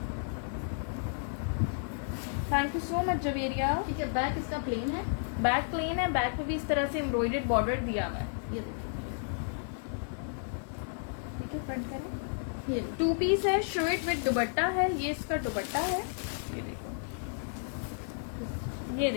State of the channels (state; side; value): silent; right; 56 dB below the other